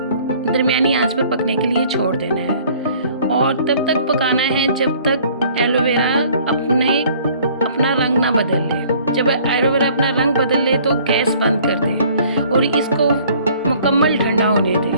दरमियानी आंच पे पकने के लिए छोड़ देना है। और तब तक पकाना है जब तक एलोवेरा अपना रंग ना बदल ले। जब एलोवेरा अपना रंग बदल ले तो गैस बंद कर दे और इसको मुकम्मल ठंडा होने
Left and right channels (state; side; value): inverted; both; correlation -0.55